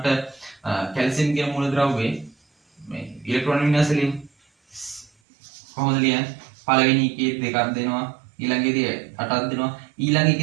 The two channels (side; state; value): left; drops out; at 5.1 s